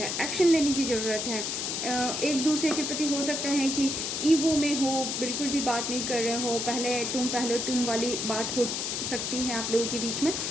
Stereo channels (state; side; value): noise; left; hiss, 2 dB below the sound